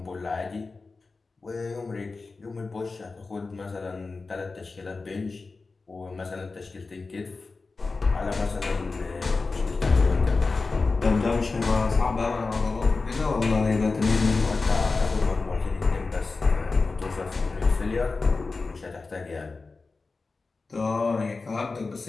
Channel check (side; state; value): right; quieter; 4.0 dB